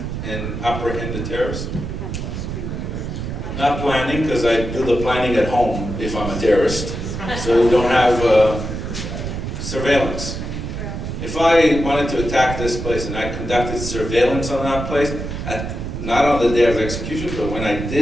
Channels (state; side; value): noise; right; rumble, 5 dB below the sound